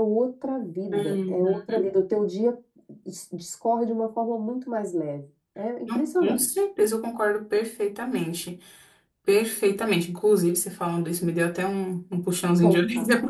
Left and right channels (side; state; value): both; identical; correlation 1.00